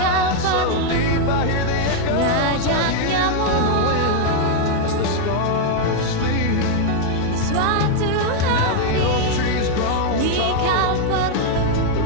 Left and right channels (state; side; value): different; both; correlation 0.00